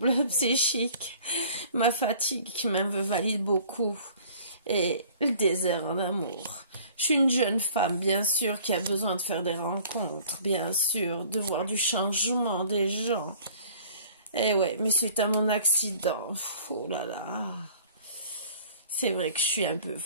psychiques, ma fatigue qui m'invalide beaucoup et le désert en amour. Je suis une jeune femme, bien sûr, qui a besoin de faire des rencontres, bien sûr, de voir du changement des gens. Eh ouais, mais suite à mon accident, oh là là, c'est vrai que je suis un peu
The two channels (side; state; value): both; inverted; correlation -0.51